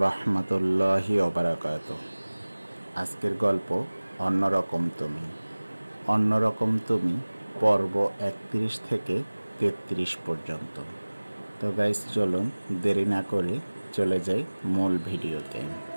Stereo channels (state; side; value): inverted; both; correlation -1.00